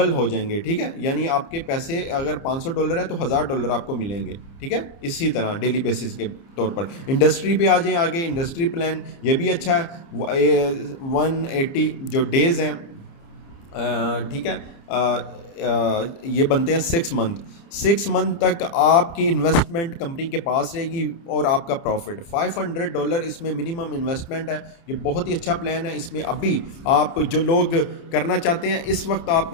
हो जाएंगे। ठीक है, यानी आपके पैसे अगर $500 है तो $1000 आपको मिलेंगे। ठीक है, इसी तरह डेली बेसिस के तौर पर। इंडस्ट्री पे आ जाएं आगे, इंडस्ट्री प्लान ये भी अच्छा है। 180 जो डेज़ हैं, ठीक है, ये बनते हैं 6 मंथ तक आपकी इन्वेस्टमेंट कंपनी के पास रहेगी और आपका प्रॉफिट $500 इसमें मिनिमम इन्वेस्टमेंट है। ये बहुत ही अच्छा प्लान है। इसमें अभी आप जो लोग करना चाहते हैं इस वक्त आप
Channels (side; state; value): right; late; 29 ms